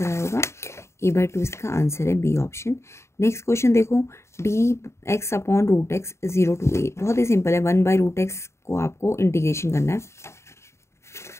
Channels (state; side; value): late; right; 0.13 ms